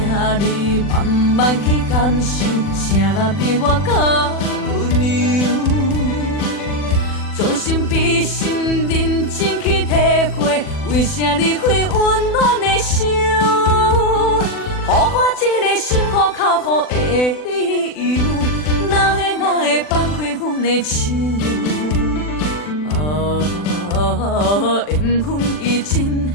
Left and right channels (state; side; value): late; right; 40 ms